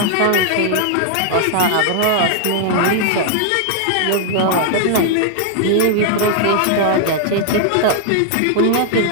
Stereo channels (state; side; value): different; both; correlation 0.00